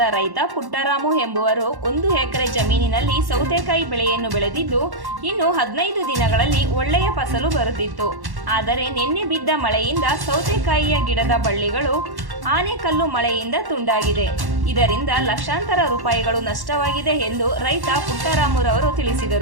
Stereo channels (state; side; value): late; left; 1.1 ms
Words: ರೈತ ಪುಟ್ಟರಾಮು ಎಂಬುವರು 1 ಎಕರೆ ಜಮೀನಿನಲ್ಲಿ ಸೌತೆಕಾಯಿ ಬೆಳೆಯನ್ನು ಬೆಳೆದಿದ್ದು ಇನ್ನು 15 ದಿನಗಳಲ್ಲಿ ಒಳ್ಳೆಯ ಫಸಲು ಬರುತ್ತಿತ್ತು. ಆದರೆ ನಿನ್ನೆ ಬಿದ್ದ ಮಳೆಯಿಂದ ಸೌತೆಕಾಯಿಯ ಗಿಡದ ಬಳ್ಳಿಗಳು ಆನೆಕಲ್ಲು ಮಳೆಯಿಂದ ತುಂಡಾಗಿದೆ. ಇದರಿಂದ ಲಕ್ಷಾಂತರ ರೂಪಾಯಿಗಳು ನಷ್ಟವಾಗಿದೆ ಎಂದು ರೈತ ಪುಟ್ಟರಾಮುರವರು